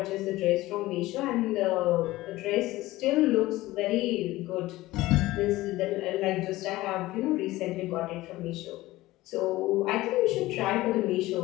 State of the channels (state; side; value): quieter; right; 17.8 dB